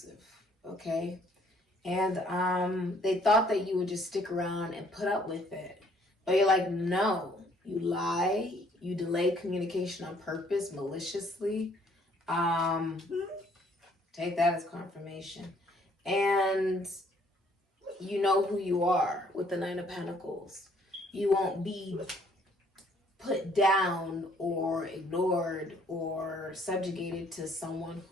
okay? And they thought that you would just stick around and put up with it. But you're like, no. You lie. You delay communication on purpose, maliciously. Take that as confirmation. And you know who you are with the Nine of Pentacles. You won't be put down or ignored or subjugated to someone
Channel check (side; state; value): both; normal; correlation 0.63